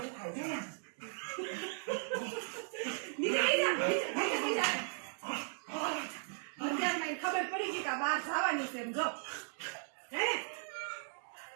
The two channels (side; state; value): left; silent; 53 dB below the other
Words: ખબર પડી ગઈ કે બહાર જવાની છે એમ, જો હે